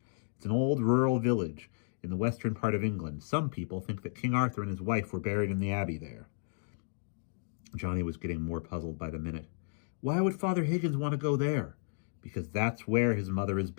It's an old rural village in the western part of England. Some people think that King Arthur and his wife were buried in the abbey there." Johnny was getting more puzzled by the minute. "Why would Father Higgins want to go there?" "Because that's where his mother is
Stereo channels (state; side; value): silent; right; digital silence